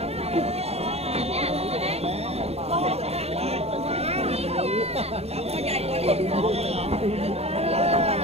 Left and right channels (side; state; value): left; late; 0.30 ms